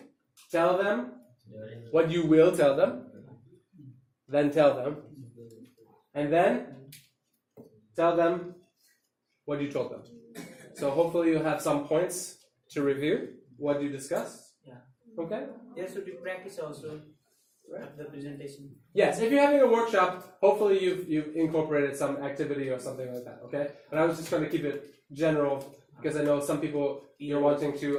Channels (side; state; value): both; identical; correlation 1.00